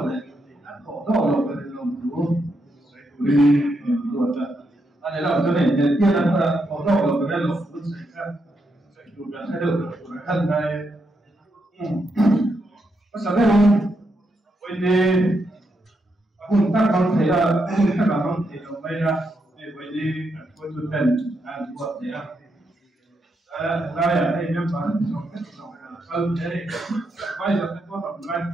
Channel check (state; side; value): normal; both; correlation 0.81